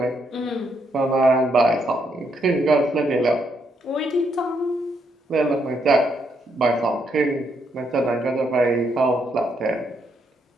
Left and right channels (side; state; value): both; normal; correlation 0.75